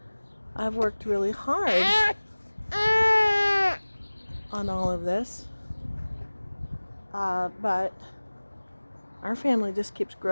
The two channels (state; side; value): inverted; both; correlation -1.00